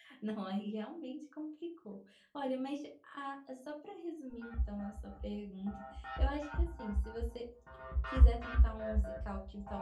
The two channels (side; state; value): both; identical; correlation 1.00